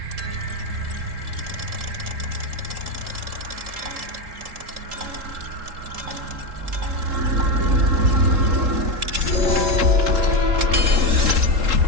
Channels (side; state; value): left; late; 3.7 ms